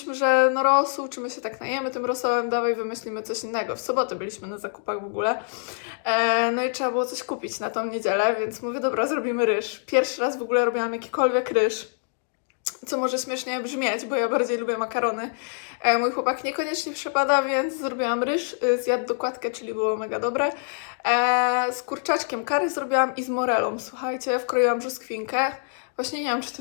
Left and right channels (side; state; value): right; silent; digital silence